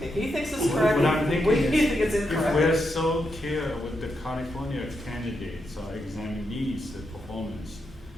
he thinks it's correct. What I'm thinking We is, think it's if we're incorrect. so clear with the California candidates or examinees, the performance,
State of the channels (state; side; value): normal; both; correlation 0.83